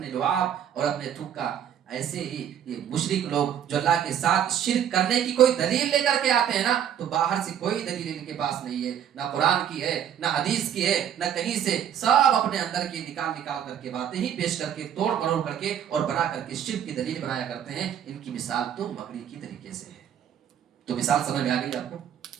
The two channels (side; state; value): left; quieter; 9.4 dB